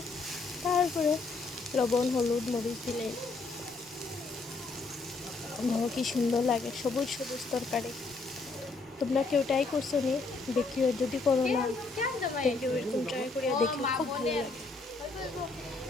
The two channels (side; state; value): right; quieter; 3.8 dB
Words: তারপরে লবণ হলুদ মরিচ দিলে দেখো কি সুন্দর লাগে, সবুজ সবুজ তরকারি। তোমরা কেউ ট্রাই করছো নি? দেখিও, যদি করো না দেখিও, এরকম ট্রাই করিয়া দেখিও, খুব ভালো লাগে।